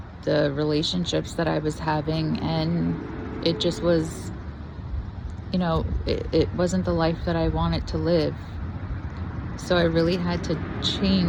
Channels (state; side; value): identical; both; correlation 1.00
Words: the relationships that I was having, and it just was, you know, it wasn't the life that I wanted to live. So I really had to